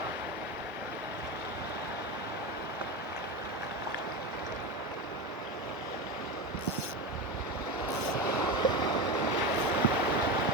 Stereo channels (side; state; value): both; normal; correlation 0.20